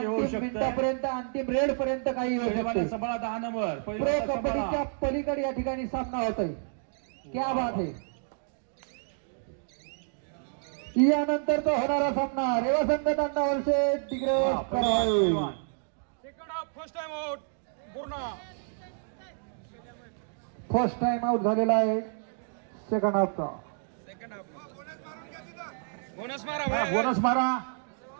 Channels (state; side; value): silent; left; digital silence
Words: होऊ अंतिम शकते. मिनिटापर्यंत अंतिम रेड पर्यंत काही होऊ पैलवान शकते सांभाळा 10 नंबर प्रो पैलवान कबड्डीच्या सांभाळा. पलीकडे या ठिकाणी सामना होत आहे क्या बात आहे यानंतर तो होणारा सामना रेवा संघ तांडा वर्षे तिकडे हा, पैलवान. फर्स्ट टाइम आउट झालेला आहे सेकंड हाफचा हा, बोनस मारा